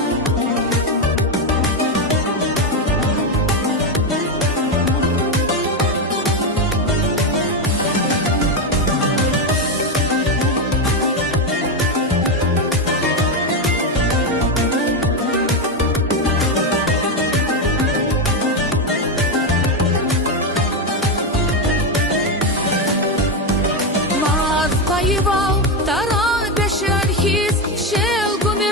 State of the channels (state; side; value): normal; both; correlation 0.09